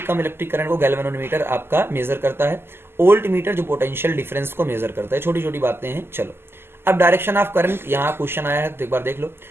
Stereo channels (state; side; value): late; left; 0.12 ms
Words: कम इलेक्ट्रिक करंट को गैल्वेनोमीटर आपका मेजर करता है। ओल्ट मीटर जो पोटेंशियल डिफरेंस को मेजर करता है। छोटी छोटी बातें हैं। चलो अब डायरेक्शन ऑफ करंट, यहाँ क्वेश्चन आया है तो एक बार देख लो।